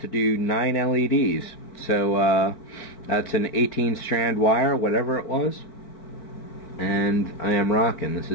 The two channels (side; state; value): right; late; 4.5 ms